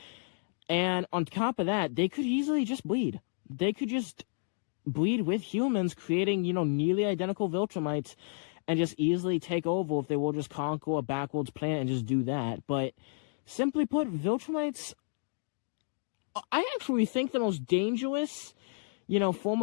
And on top of that, they could easily just bleed. They could just bleed with humans, creating, nearly identical Viltrumites, and just easily take over if they will just conquer a backwards planet and just do that. But simply put, Viltrumites, I actually think the most dangerous, form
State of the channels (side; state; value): right; silent; digital silence